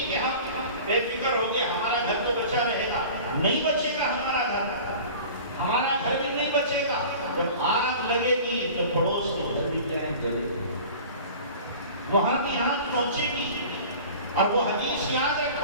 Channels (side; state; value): both; inverted; correlation -0.40